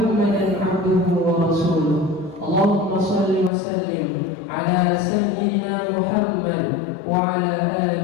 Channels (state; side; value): drops out; right; at 3.5 s